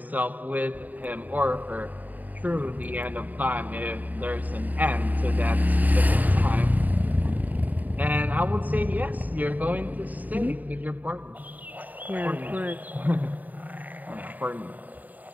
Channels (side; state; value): left; late; 0.080 ms